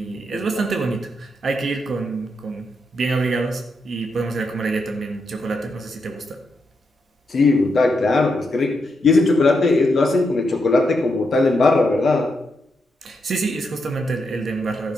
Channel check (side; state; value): both; normal; correlation 0.82